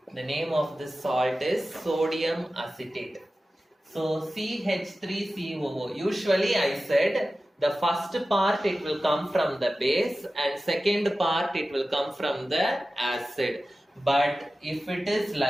The name of this salt is sodium acetate. So CH3COO. Usually I said the first part it will come from the base and second part it will come from the acid. But if it is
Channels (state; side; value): normal; both; correlation 0.95